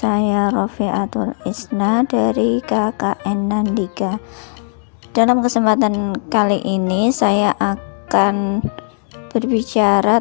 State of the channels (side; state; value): right; silent; digital silence